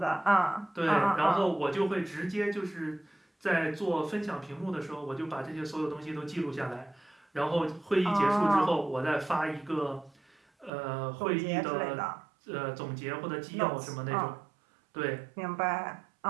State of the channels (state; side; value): drops out; left; at 10.7 s